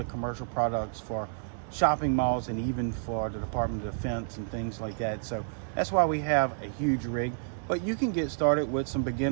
commercial products for shopping malls and even for the Department of Defense and things like that. So that's why we have a huge rig, but you can get started with some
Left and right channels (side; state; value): left; silent; 57 dB below the other